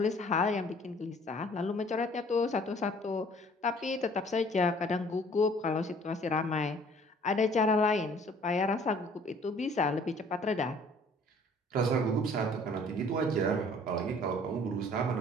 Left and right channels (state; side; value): normal; both; correlation 0.55